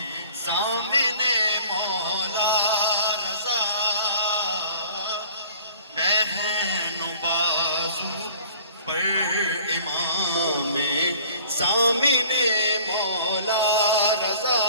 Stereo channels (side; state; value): both; inverted; correlation -0.50